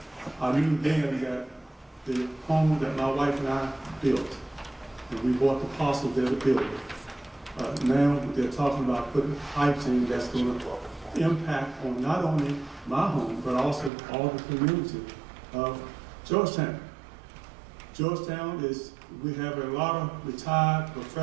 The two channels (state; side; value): drops out; left; at 13.9 s